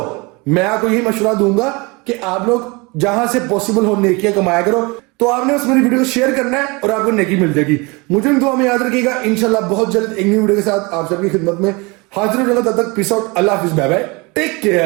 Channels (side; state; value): left; quieter; 27.0 dB